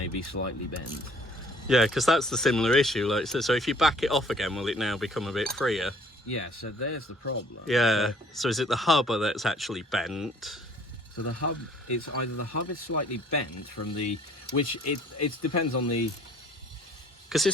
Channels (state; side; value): normal; both; correlation 0.56